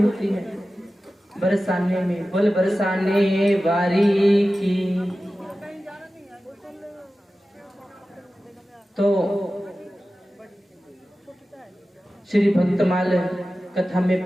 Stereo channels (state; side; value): normal; both; correlation 0.95